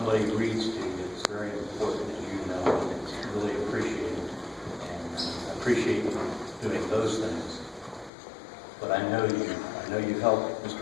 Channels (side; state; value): right; drops out; at 8.1 s